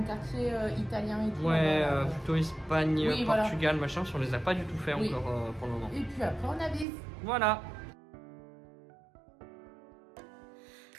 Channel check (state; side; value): drops out; left; at 6.9 s